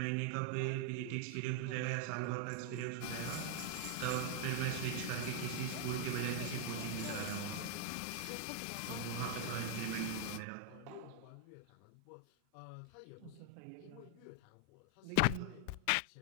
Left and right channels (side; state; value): both; different; correlation 0.00